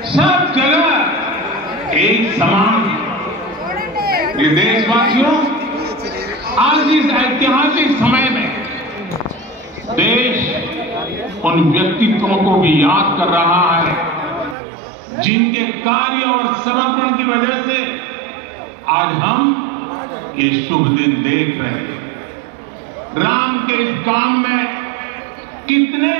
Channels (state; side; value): drops out; left; at 14.6 s